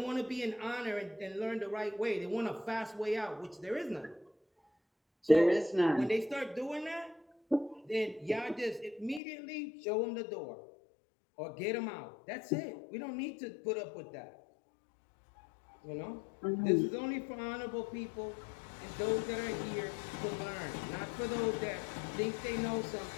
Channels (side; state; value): right; drops out; at 9.2 s